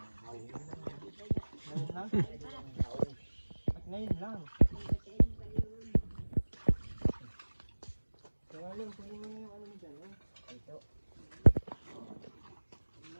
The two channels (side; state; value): both; inverted; correlation -1.00